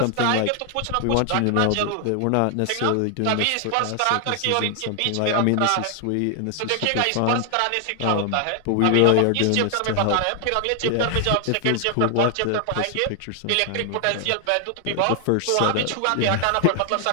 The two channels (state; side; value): different; both; correlation 0.00